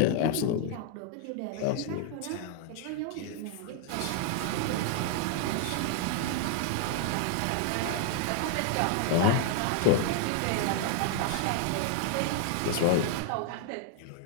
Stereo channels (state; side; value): different; both; correlation 0.00